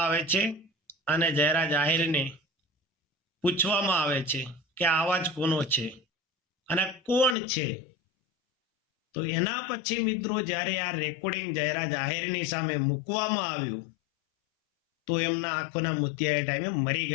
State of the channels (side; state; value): right; drops out; at 7.4 s